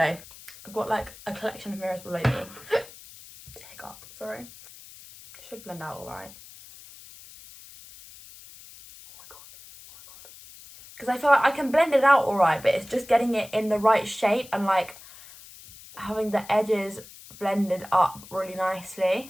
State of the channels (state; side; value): noise; left; hiss, 19 dB below the sound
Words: I've got like a collection of mirrors below me. Hiccup, sorry. Should blend out alright. Because I feel like I can blend it out alright, but it's just getting it in the right shape and like having the edges blended up really